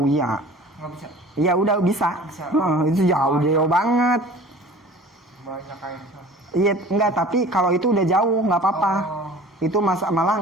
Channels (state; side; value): normal; both; correlation 0.44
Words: ya. Nggak bisa. Ya udah bisa. Itu jauh banget. Banyak air. Iya enggak, tapi kalau itu udah jauh nggak apa-apa. Itu